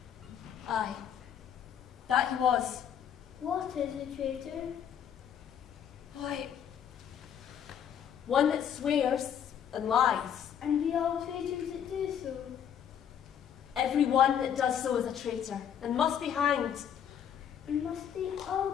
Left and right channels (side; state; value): right; quieter; 8.8 dB